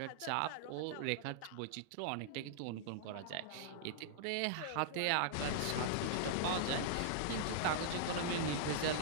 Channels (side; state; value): both; different; correlation -0.02